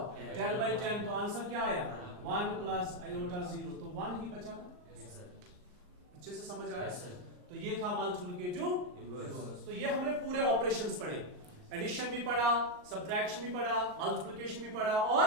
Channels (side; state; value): left; late; 39 ms